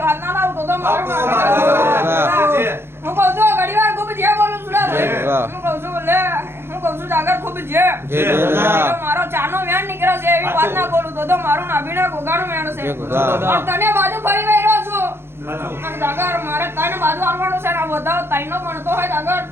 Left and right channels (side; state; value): left; late; 0.11 ms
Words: વાત ના લાવ તો મારું હું કહું છું ઘડીવાર ખૂબ જે બોલું છું હું કહું છું લે હું કહું છું સાગર ખૂબ જે મારો ચાનો વેણ નીકળે છે એવી વાત ના બોલું તો મારું નાભીના ગોગાડું વેણ છે. તને બાજુ ફરી વઈ રહ્યો છું અને સાગર મારે તને બાજુ આવવાનું છે ને વધાવ તાઈનો ભણતો હોય સાગર